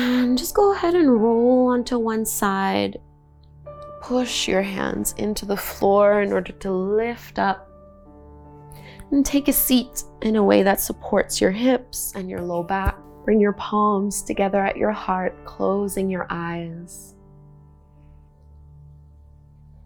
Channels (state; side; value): identical; both; correlation 1.00